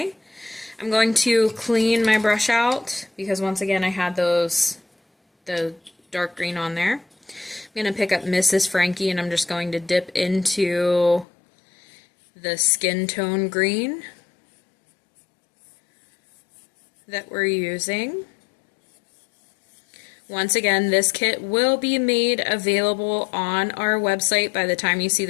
I'm going to clean my brush out because once again I had the dark green on there. I'm going to pick up Mrs. Frankie and I'm just going to dip into the skin tone green that we're using. Once again, this kit will be made available on our website. By the time you see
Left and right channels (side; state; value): right; drops out; at 11.2 s